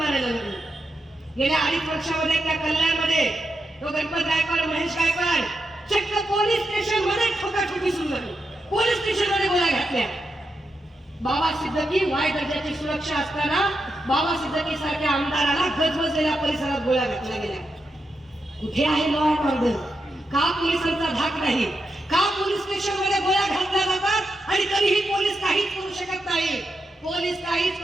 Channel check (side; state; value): both; normal; correlation 0.85